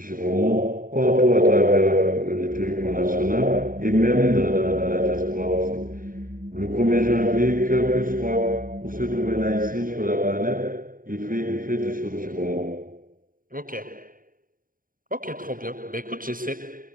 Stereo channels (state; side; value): late; left; 0.41 ms